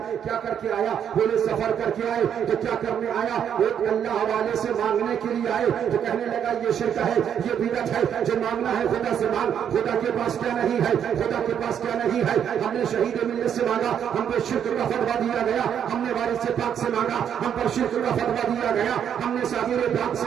کیا کر کے آیا؟ بولے سفر کر کے آئے. تو کیا کرنے آیا؟ ایک اللہ والے سے مانگنے کے لیے آئے. تو کہنے لگا یہ شرک ہے, یہ بدعت ہے. جو مانگنا ہے خدا سے مانگ. خدا کے پاس کیا نہیں ہے, خدا کے پاس کیا نہیں ہے. ہم نے شہید ملت سے مانگا, ہم پر شرک کا فتویٰ دیا گیا. ہم نے وارث پاک سے مانگا, ہم پر شرک کا فتویٰ دیا گیا. ہم نے صابر پاک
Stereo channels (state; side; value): quieter; left; 8.7 dB